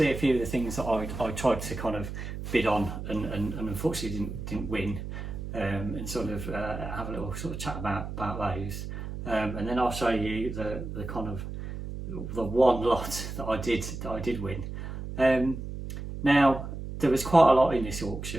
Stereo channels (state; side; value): noise; right; hum, 7 dB below the sound